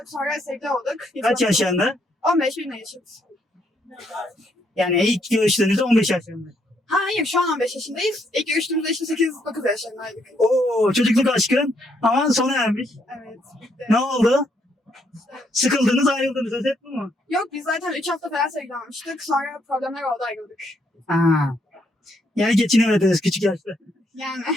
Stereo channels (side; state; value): both; normal; correlation 0.73